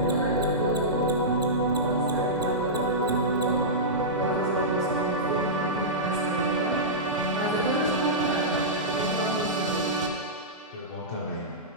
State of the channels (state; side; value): normal; both; correlation -0.15